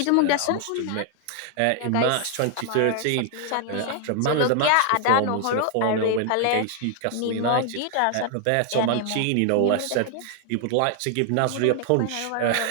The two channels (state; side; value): different; both; correlation 0.00